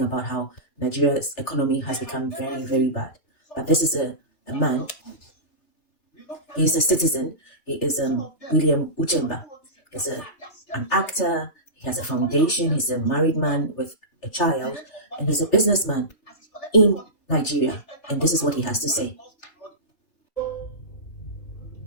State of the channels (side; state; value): right; late; 3.3 ms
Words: about how Nigeria's economy has become very, very bad. But this is a man. He's a citizen. He is William Uchemba. He's an actor. He has a foundation. He's a married man with a child. And he's a businessman in Nigeria. And this is what he has to say.